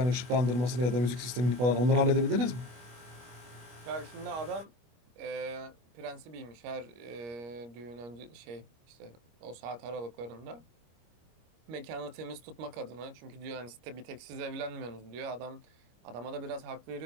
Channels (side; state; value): left; late; 24 ms